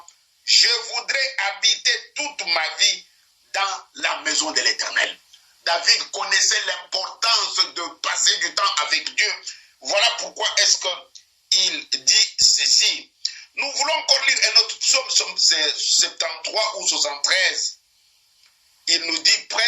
Je voudrais habiter toute ma vie dans la maison de l'Éternel. David connaissait l'importance de passer du temps avec Dieu. Voilà pourquoi est-ce qu'il dit ceci. Nous voulons encore lire un autre psaume, psaume 73 ou 73. Il nous dit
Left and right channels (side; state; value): both; identical; correlation 1.00